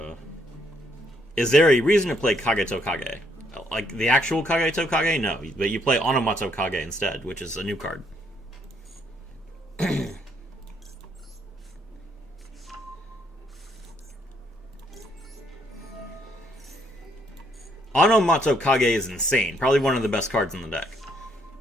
Is there a reason to play Kageto Kage? Like the actual Kageto Kage? No, but you play Onomatsu Kage instead, which is a new card. Onomatsu Kage is insane. Probably one of the best cards in the deck.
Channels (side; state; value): both; normal; correlation 0.71